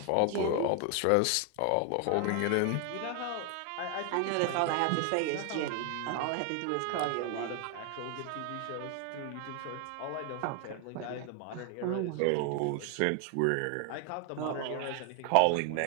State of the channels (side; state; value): both; different; correlation 0.01